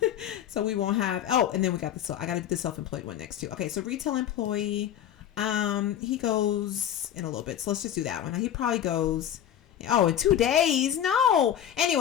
So we won't have, and then we got I got to do the self-employed one next too. Okay, so retail employee. He goes in a little bit, so let's just do that one. He probably goes in 2 days. No,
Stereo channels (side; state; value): right; quieter; 10.3 dB